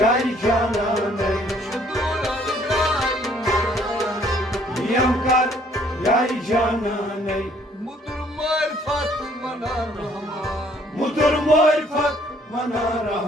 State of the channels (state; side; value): normal; both; correlation 0.62